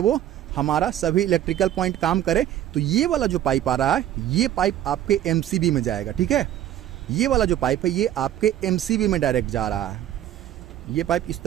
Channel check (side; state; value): left; quieter; 12.0 dB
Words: हमारा सभी इलेक्ट्रिकल पॉइंट काम करे। तो ये वाला जो पाइप आ रहा है ये पाइप आपके एमसीबी में जाएगा, ठीक है। ये वाला जो पाइप है ये आपके एमसीबी में डायरेक्ट जा रहा है। ये पाइप इस